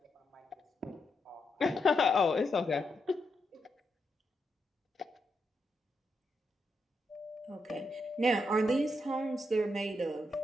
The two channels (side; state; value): both; normal; correlation 0.82